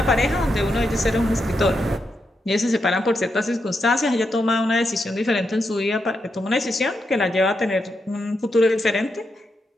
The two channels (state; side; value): normal; both; correlation 0.84